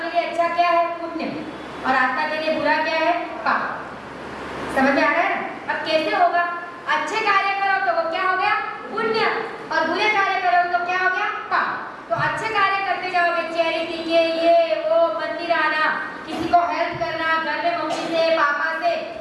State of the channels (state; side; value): identical; both; correlation 1.00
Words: लिए अच्छा क्या है? पुण्य, और आत्मा के लिए बुरा क्या है? पाप। समझ में आ रहा है? अब कैसे होगा? अच्छे कार्य करो तो वो क्या हो गया? पुण्य, और बुरे कार्य करो तो क्या हो गया? पाप। तो अच्छे कार्य करते जाओगे, चैरिटी के, ये वो, मंदिर आना, किसी को हेल्प करना, घर में मम्मी से पापा से